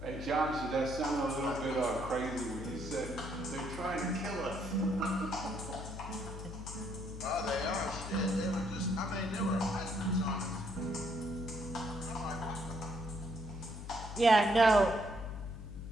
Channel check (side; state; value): left; noise; hum, 9 dB below the sound